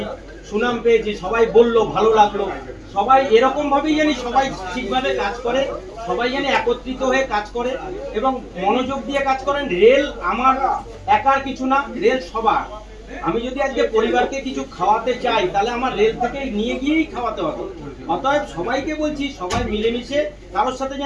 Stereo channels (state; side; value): identical; both; correlation 1.00